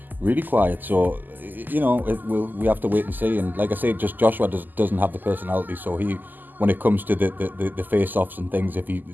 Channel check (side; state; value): left; late; 0.087 ms